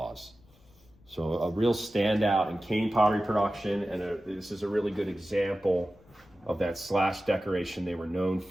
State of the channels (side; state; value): left; noise; rumble, 29 dB below the sound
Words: So a real standout in Kane pottery production, and this is a really good example of that slash decoration they were known